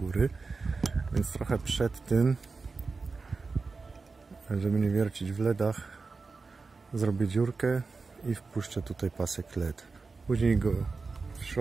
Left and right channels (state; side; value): quieter; left; 4.2 dB